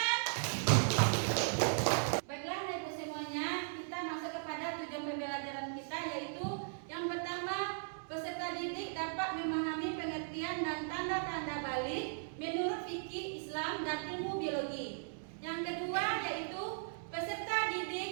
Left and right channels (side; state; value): left; silent; digital silence